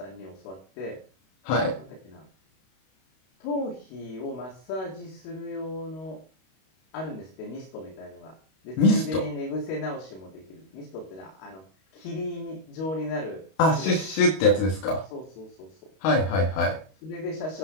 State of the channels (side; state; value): right; late; 32 ms